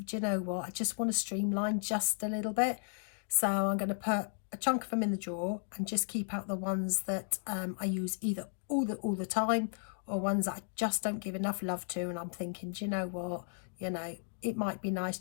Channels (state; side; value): silent; right; digital silence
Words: do you know what, I just want to streamline just a little bit. So I'm going to put a chunk of them in the drawer and just keep out the ones that I use either all the time, or ones that I just don't give enough love to, and I'm thinking, do you know what, it might be nice